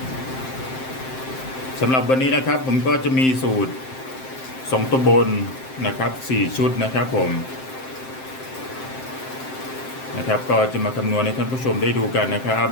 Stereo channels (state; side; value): late; right; 7.7 ms